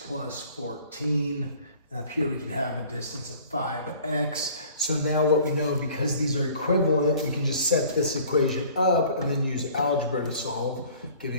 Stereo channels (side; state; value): both; inverted; correlation -0.50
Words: plus 14. And up here we can have a distance of 5x. So now what we know, because these are equivalent, we can just set this equation up and then use algebra to solve,